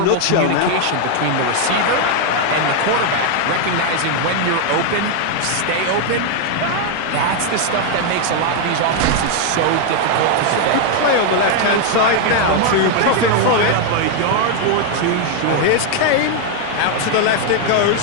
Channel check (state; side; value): different; both; correlation 0.00